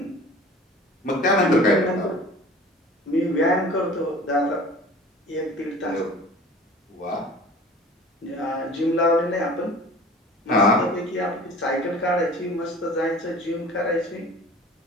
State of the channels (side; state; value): both; normal; correlation 0.44